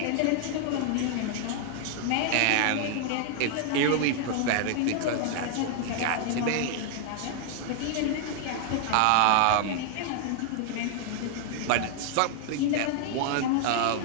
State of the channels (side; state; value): both; different; correlation 0.00